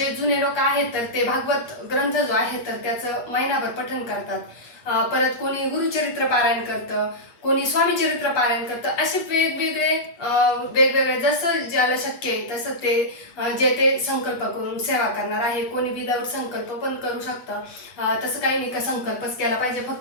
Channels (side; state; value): right; late; 8.4 ms